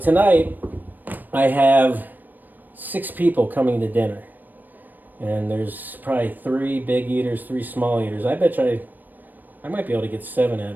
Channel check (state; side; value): late; left; 0.089 ms